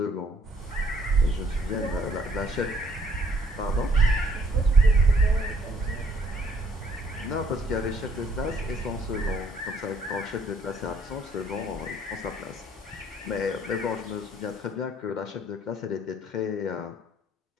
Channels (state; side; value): normal; both; correlation 0.62